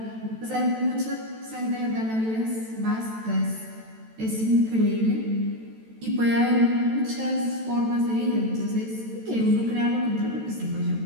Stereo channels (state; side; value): late; left; 13 ms